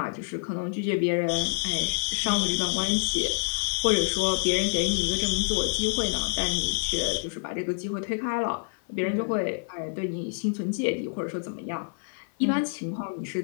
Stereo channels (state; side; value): silent; right; 55 dB below the other